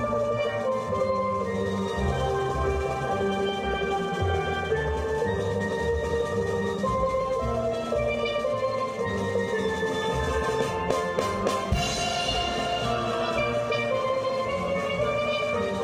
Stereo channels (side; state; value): both; identical; correlation 1.00